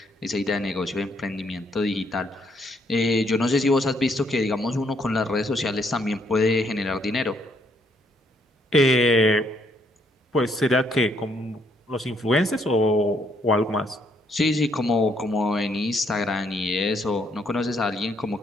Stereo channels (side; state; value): both; normal; correlation 0.70